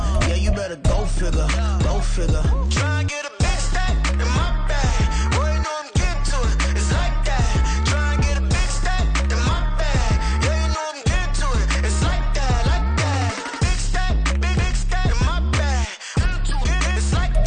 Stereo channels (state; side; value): identical; both; correlation 1.00